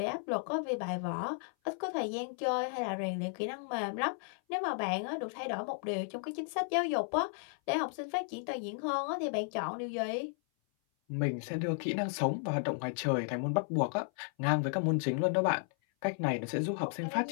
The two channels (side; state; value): right; silent; 55 dB below the other